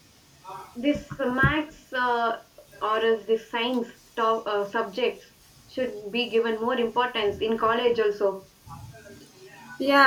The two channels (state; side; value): identical; both; correlation 1.00